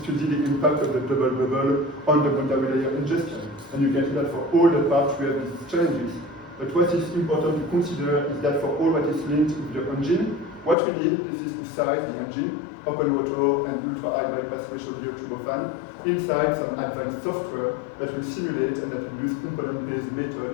the impact of the double bubble on the boundary layer ingestion. And you can see that for all the parts we have these challenges. But what is important to consider is that for all what is linked with the engine, what we need is to size the engine, open water and ultra-high bypass ratio gear turbofan, inside some advanced software that will simulate and that will use component-based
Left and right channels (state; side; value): drops out; right; at 10.8 s